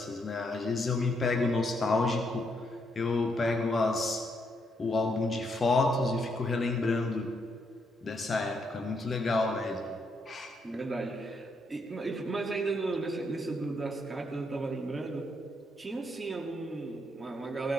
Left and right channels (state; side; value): normal; both; correlation 0.76